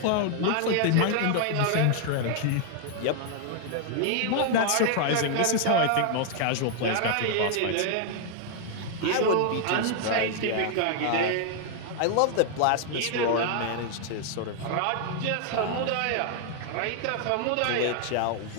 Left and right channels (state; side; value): different; both; correlation 0.00